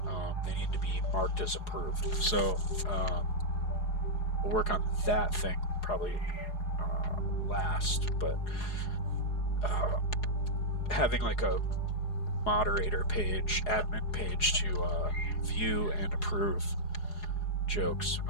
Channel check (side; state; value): right; late; 4.8 ms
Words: they need to be marked as approved. So we'll work on that thing probably last, but having like a moderator page, admin page to view and approve jokes.